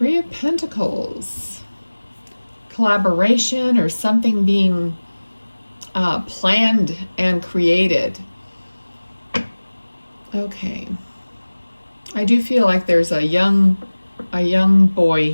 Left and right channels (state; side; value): inverted; both; correlation -1.00